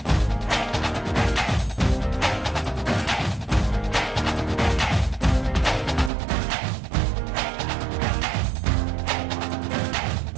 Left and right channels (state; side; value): drops out; left; at 6.1 s